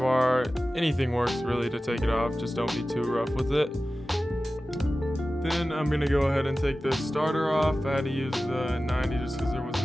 Anything works really to take it off, just don't be too rough with it. Then I'm gonna go ahead and take the starter off. I had to use the 90 just because there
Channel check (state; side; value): normal; both; correlation 0.95